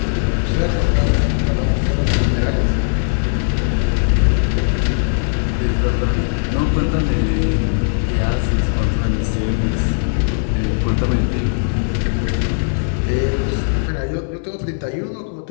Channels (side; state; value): right; silent; 62 dB below the other